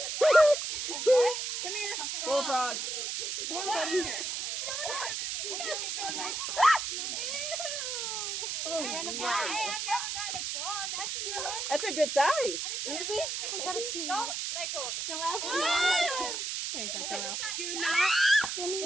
What? Come here. Bullfrog. Come on, buddy. Hey, I've never gotten a frog. That's a new one. That's a good size. Let me see. I got a snake. Don't let go. Joelle. There you go, Joelle. Do not.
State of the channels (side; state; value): right; noise; hiss, 3 dB below the sound